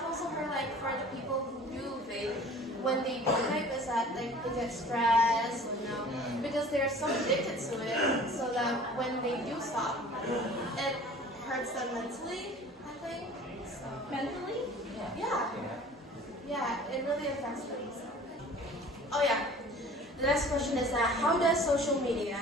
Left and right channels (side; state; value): both; normal; correlation 0.46